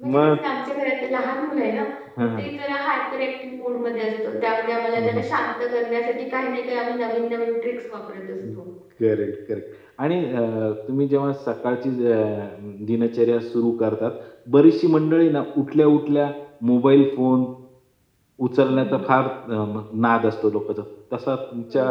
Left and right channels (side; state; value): both; identical; correlation 1.00